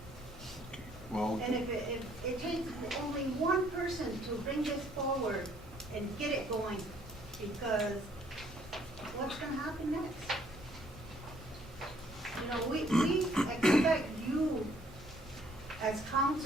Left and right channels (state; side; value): normal; both; correlation 0.64